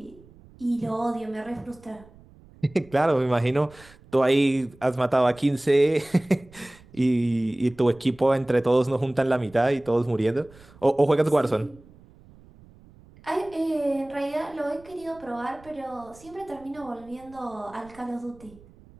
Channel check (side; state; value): right; noise; rumble, 25 dB below the sound